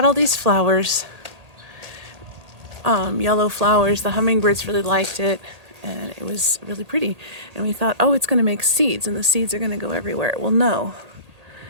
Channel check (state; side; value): late; left; 1.8 ms